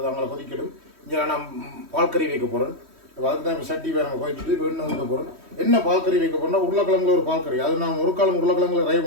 அவங்கள கொதிக்கணும். இங்கே நான் பால் கறி வைக்க போகிறேன். அதுக்கு தான் இப்போ சட்டி வேறு நம்ம கொதிச்சுட்டு இப்போ எண்ணெய் ஊற்ற போகிறேன். என்ன பால் கறி வைக்க போகிறேன்னா உருளைக்கிழங்குல ஒரு பால் கறி. அது நான் ஒரு காலம் உருளைக்கிழங்குல ரை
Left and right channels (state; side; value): late; left; 3.1 ms